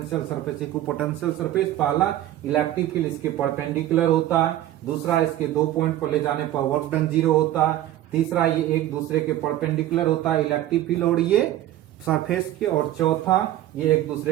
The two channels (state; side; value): quieter; left; 13.6 dB